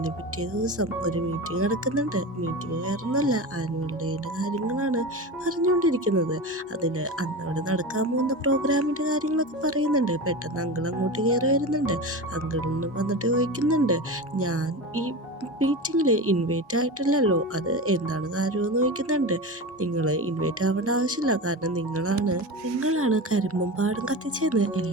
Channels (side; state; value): both; normal; correlation 0.26